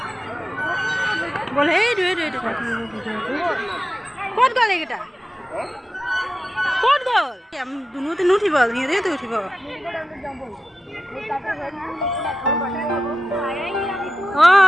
বল সেই ভিডিঅ'টো ক'ত গ'ল এইকেইটা ক'ত গ'ল দুনুতে নুঠিব সিহঁতেতো উঠিব।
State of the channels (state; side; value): normal; both; correlation 0.92